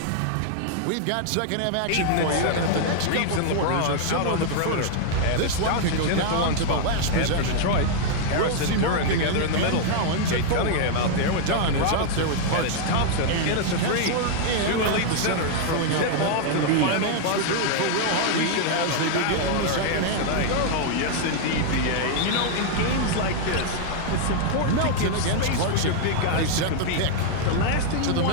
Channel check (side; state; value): both; different; correlation 0.00